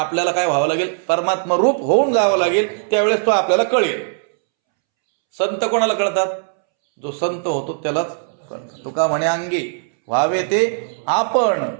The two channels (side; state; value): left; silent; 67 dB below the other